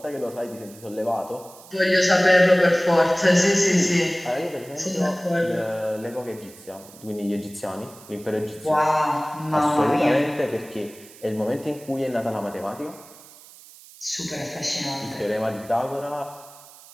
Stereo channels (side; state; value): right; noise; hiss, 21 dB below the sound